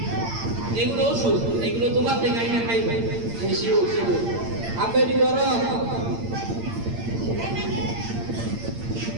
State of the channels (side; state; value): left; late; 8.8 ms